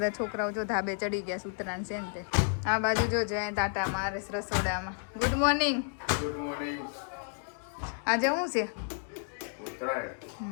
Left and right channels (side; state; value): right; silent; 57 dB below the other